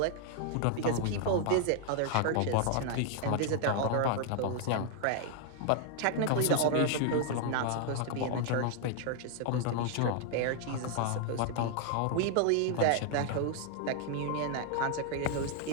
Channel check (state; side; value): different; both; correlation 0.00